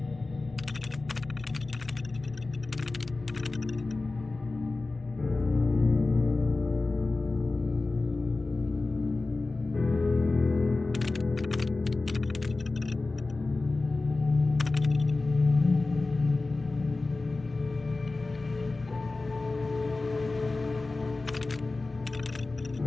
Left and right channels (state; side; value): quieter; right; 3.4 dB